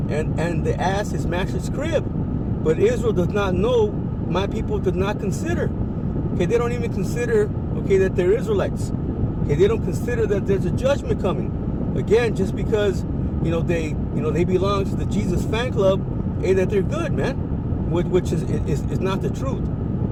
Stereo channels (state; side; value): identical; both; correlation 1.00